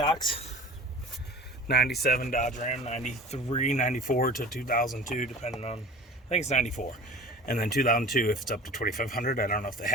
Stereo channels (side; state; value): both; normal; correlation 0.41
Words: 97 Dodge Ram, 93, 94 to 2002, depending on, I think it's 94. And then 2002 if it's up to 2500. I don't know if they